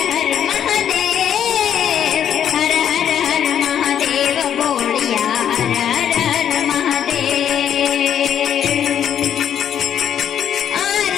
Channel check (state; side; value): quieter; right; 9.4 dB